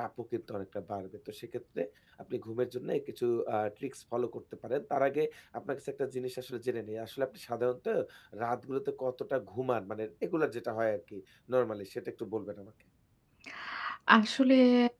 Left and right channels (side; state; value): both; identical; correlation 1.00